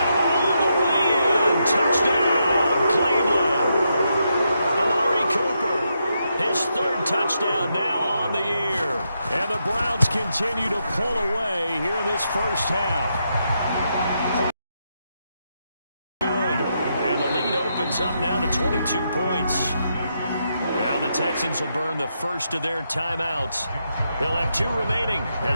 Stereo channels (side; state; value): both; inverted; correlation -0.82